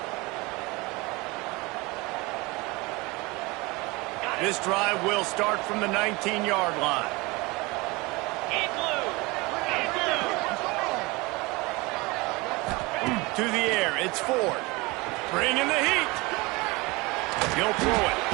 This drive will start from the 19-yard line. In blue. In blue. To the air, it's Ford. Bringing the heat. He'll throw it.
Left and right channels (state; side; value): quieter; left; 24.3 dB